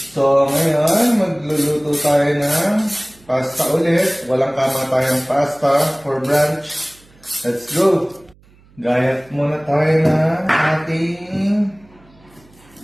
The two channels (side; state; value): right; noise; hum, 29 dB below the sound